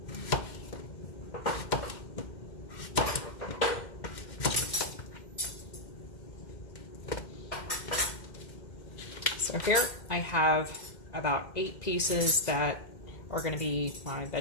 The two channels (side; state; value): right; late; 2.1 ms